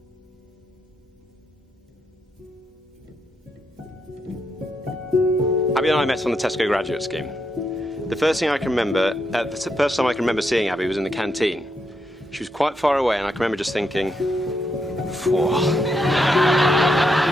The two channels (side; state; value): both; normal; correlation 0.80